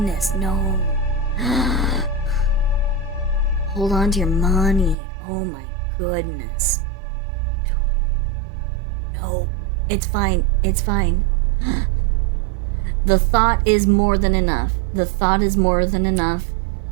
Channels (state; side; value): drops out; left; at 5.0 s